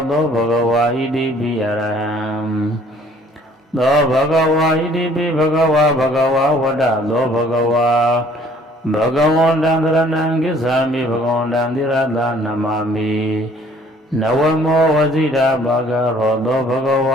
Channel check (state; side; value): normal; both; correlation 0.57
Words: သောဘဂဝါဣတိပိအရဟံသောဘဂဝါဣတိပိဘဂဝါဝတ္တသောဘဂဝါဘဂဝန္တံသရဏံကိစ္ဆာမိဘဂဝန္တံသီရသနမာမိနဝမောဝစီရာဘာဂရောသောဘဂဝ